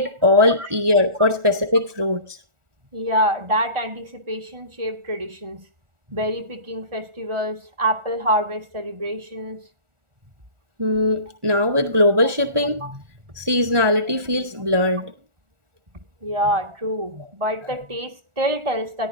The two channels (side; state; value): left; late; 1.4 ms